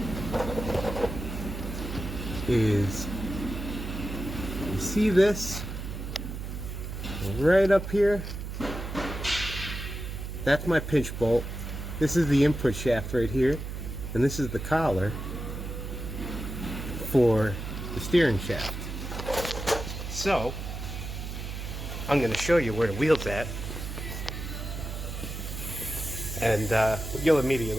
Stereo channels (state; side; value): noise; right; hum, 6 dB below the sound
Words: is, you see this right up here? That's my pinch bolt. This is the input shaft right here, and this is the collar for the steering shaft. So I'm going to show you where the wheel's at, and you'll